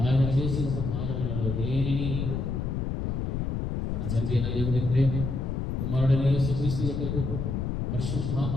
చేసిన ఉపకారములలో దేనిని మరొకము. మన తండ్రి అయిన దేవుని ప్రేమ, కుమారుడైన యేసుక్రీస్తు యొక్క కృప,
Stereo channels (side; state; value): left; noise; rumble, 1 dB below the sound